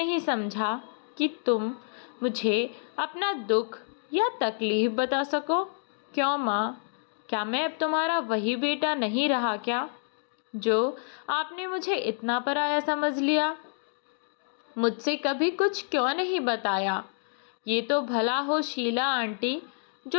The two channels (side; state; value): right; silent; digital silence